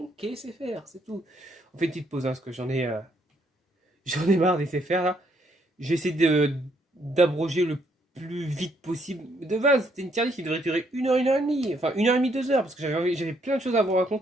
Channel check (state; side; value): normal; both; correlation 0.71